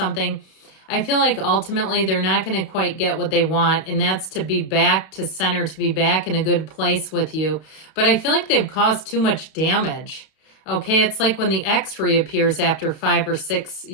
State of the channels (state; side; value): late; right; 32 ms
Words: I feel like ultimately they're not going to quite get what they want, and that's to be back to center, to be back in a good place with you. But I feel like they've caused too much damage. Okay, it's like when the ex reappears after 5 or 6